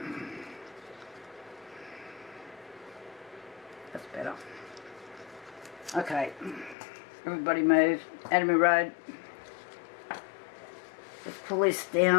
That's better. Okay, everybody move. Out of my road. Let's pull this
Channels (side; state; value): right; drops out; at 6.8 s